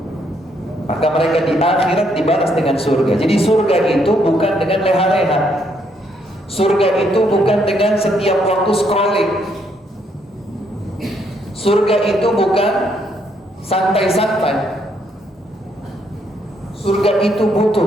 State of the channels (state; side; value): normal; both; correlation 0.72